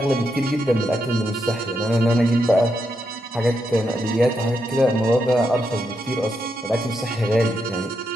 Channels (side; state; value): both; normal; correlation 0.82